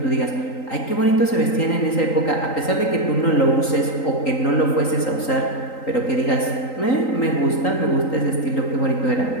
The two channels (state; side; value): late; right; 3.9 ms